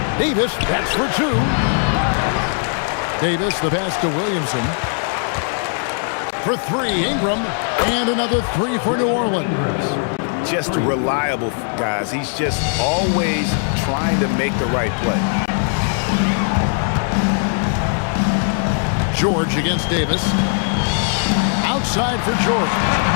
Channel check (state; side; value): silent; right; 56 dB below the other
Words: Davis, that's for 2. Davis, the pass to Williamson. For 3, Ingram. And another 3 for New Orleans. Just reliable, guys. He's just always trying to make the right play. George against Davis. Outside for George.